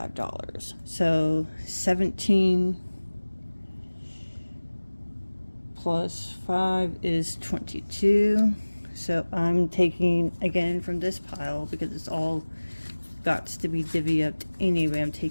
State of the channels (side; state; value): both; inverted; correlation -1.00